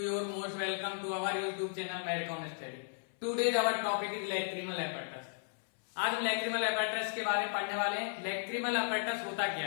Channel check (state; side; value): silent; right; 54 dB below the other